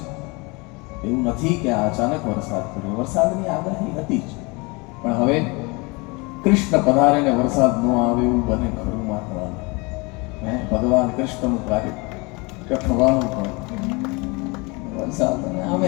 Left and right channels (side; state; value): right; quieter; 27.5 dB